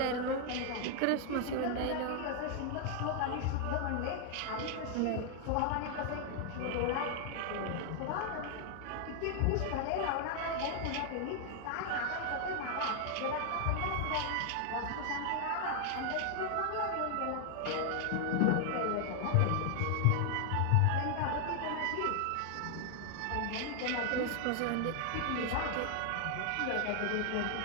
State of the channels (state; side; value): different; both; correlation 0.00